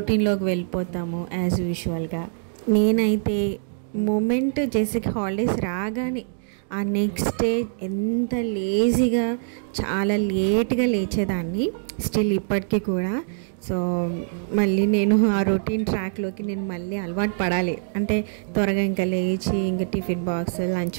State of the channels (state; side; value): silent; left; 63 dB below the other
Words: వెళ్ళిపోతాము యాజ్ యూజువల్గా. నేనైతే మూమెంట్ జెసిక్ హాలిడేస్ రాగానే ఆ నెక్స్ట్ డే ఎంత లేజీగా చాలా లేట్గా లేచేదాన్ని, స్టిల్ ఇప్పటికీ కూడా. సో మళ్ళీ నేను ఆ రొటీన్ ట్రాక్లోకి నేను మళ్ళీ అలవాటు పడాలి అంటే త్వరగా ఇంకా లేచి ఇంకా టిఫిన్ బాక్స్,